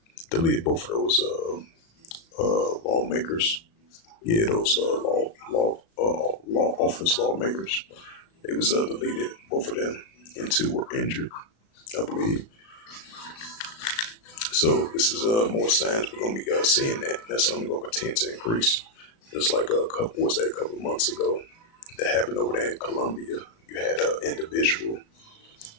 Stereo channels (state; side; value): late; right; 36 ms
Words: lawmakers. Yeah, those law office lawmakers. They was deleted, both of them, and two were injured, I believe. So this is more signs we're gonna be seeing that, and that's only gonna continue to increase. Just like a couple of months ago that happened over there in Colombia. You had an individual